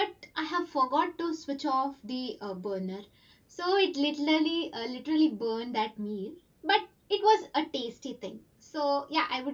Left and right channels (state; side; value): identical; both; correlation 1.00